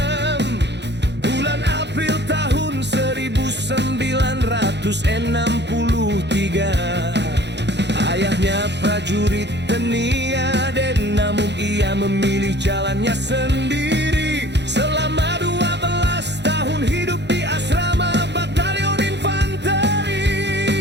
bulan April tahun 1963. Ayahnya prajurit Teni-Aden, namun ia memilih jalannya sendiri. Selama 12 tahun hidup di asrama Batalion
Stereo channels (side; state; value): left; late; 0.50 ms